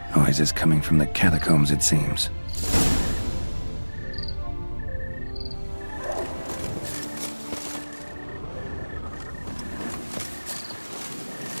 Noises coming from the catacombs, it seems.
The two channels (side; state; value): both; inverted; correlation -1.00